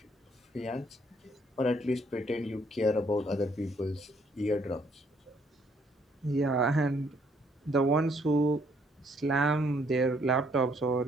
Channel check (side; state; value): both; normal; correlation 0.67